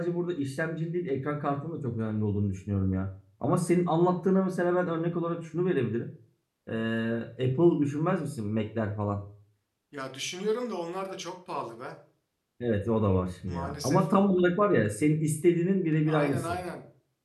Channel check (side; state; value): both; identical; correlation 1.00